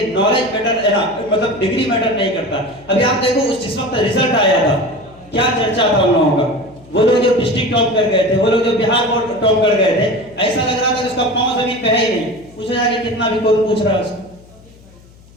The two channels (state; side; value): noise; left; hum, 25 dB below the sound